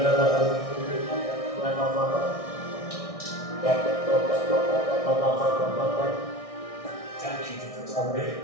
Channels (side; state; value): right; late; 1.6 ms